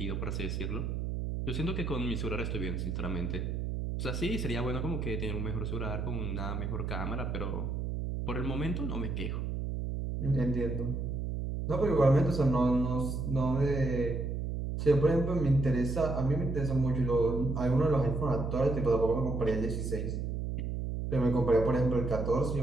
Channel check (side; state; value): right; noise; hum, 2 dB below the sound